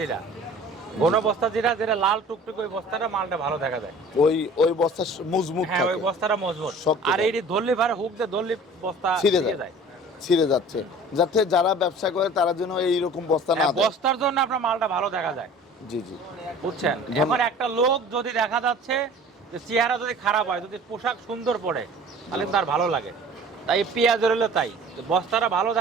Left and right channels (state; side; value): normal; both; correlation 0.45